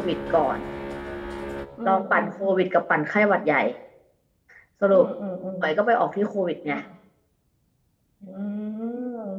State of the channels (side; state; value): both; identical; correlation 1.00